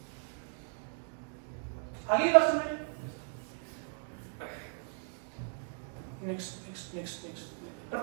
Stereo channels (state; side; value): silent; left; 54 dB below the other